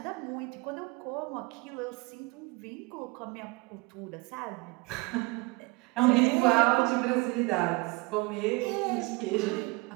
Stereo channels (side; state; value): left; quieter; 26.0 dB